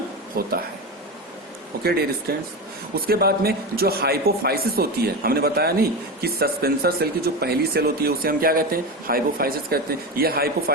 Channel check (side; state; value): both; normal; correlation 0.21